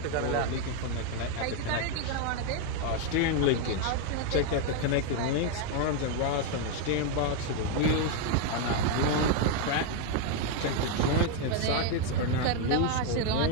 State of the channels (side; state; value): both; different; correlation 0.01